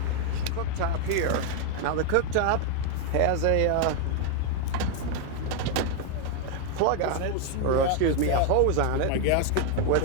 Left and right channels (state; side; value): different; both; correlation 0.01